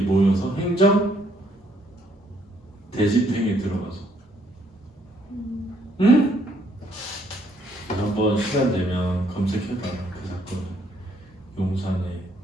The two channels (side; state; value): both; normal; correlation 0.68